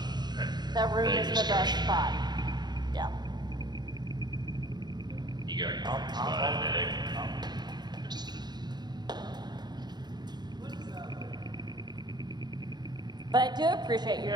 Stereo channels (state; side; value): late; left; 0.20 ms